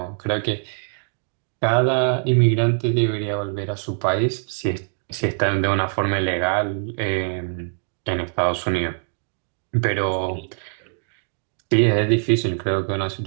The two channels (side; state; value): left; silent; 63 dB below the other